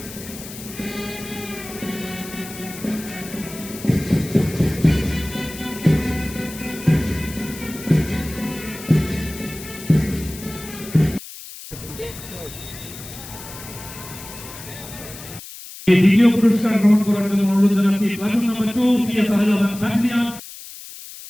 দ্বিতীয় পুরস্কার গ্রহণ করার জন্য অনুরোধ জানাচ্ছি প্লাটুন নাম্বার 2 পিএসআর এবং battalion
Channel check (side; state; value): left; noise; hiss, 14 dB below the sound